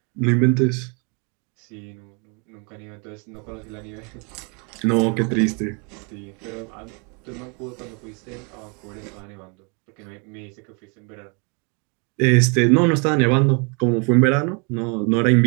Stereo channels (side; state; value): left; quieter; 34.3 dB